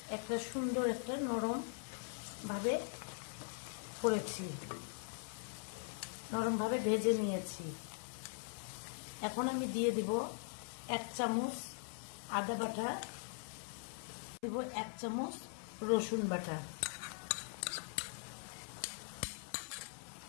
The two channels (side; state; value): right; silent; 50 dB below the other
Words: একটা সুন্দর একটা নরম ভাবে করেছি, নরম ভাবে ভেজে নিয়েছি। এখন আমি দিয়ে দিব 1 চামচ আদা বাটা, দিব 1 চামচ রসুন বাটা,